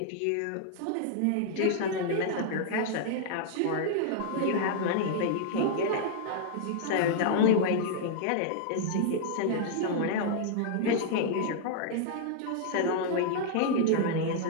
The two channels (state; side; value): different; both; correlation -0.01